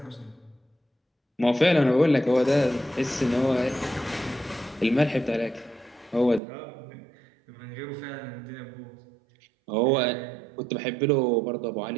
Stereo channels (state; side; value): drops out; left; at 6.4 s